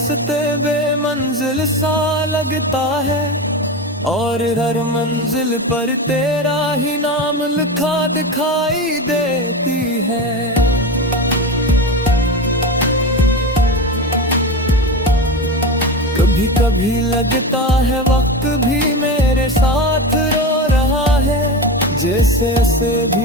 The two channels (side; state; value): both; normal; correlation 0.22